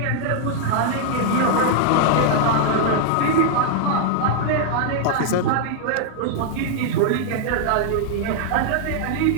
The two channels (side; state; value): both; different; correlation 0.00